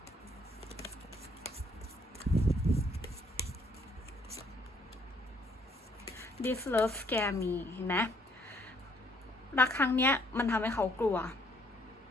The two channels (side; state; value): both; normal; correlation 0.66